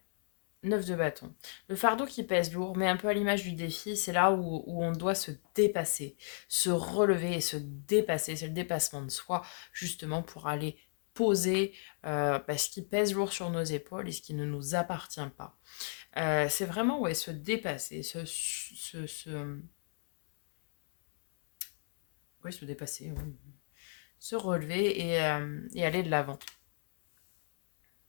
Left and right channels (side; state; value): right; silent; 55 dB below the other